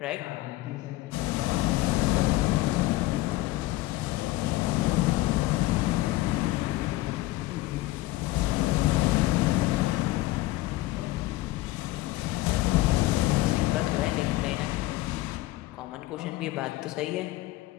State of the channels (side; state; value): right; quieter; 17.9 dB